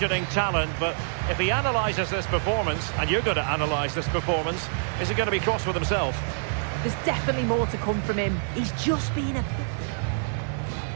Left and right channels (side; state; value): left; silent; digital silence